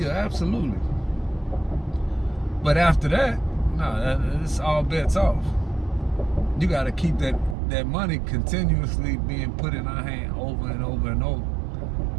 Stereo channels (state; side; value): drops out; left; at 7.6 s